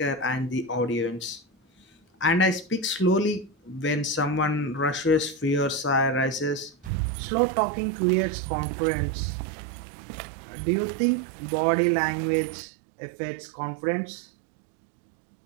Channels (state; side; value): drops out; left; at 6.9 s